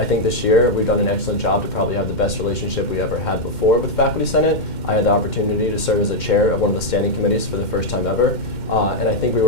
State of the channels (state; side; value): late; right; 2.1 ms